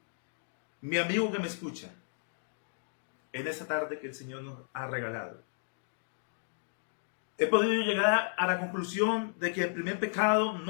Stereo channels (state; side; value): silent; right; digital silence